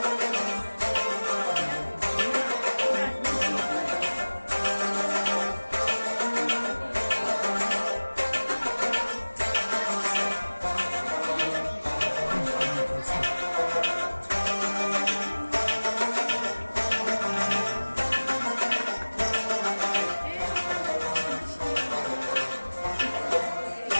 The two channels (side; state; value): both; inverted; correlation -1.00